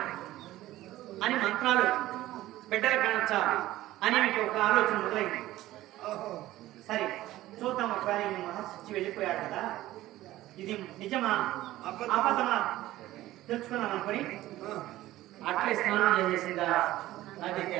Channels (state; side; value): quieter; left; 15.7 dB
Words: అని, మంత్రాలు బిడ్డలు కనొచ్చా అని మీకు ఒక ఆలోచన మొదలైంది. సరే చూద్దాం, ఒకవేళ మహర్షి వెళ్ళిపోయాడు కదా, ఇది నిజమా అబద్ధమా తెలుసుకున్నాను అనుకుని అట్లే స్నానం చేసేసిందా నది